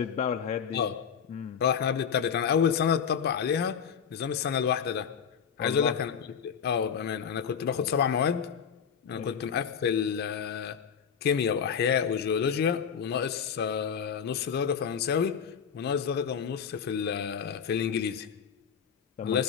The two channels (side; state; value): right; quieter; 7.3 dB